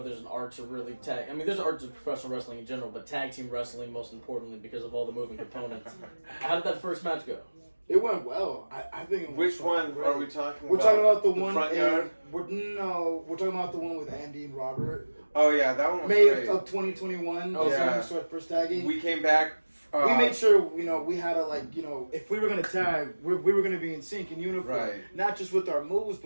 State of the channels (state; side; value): inverted; both; correlation -1.00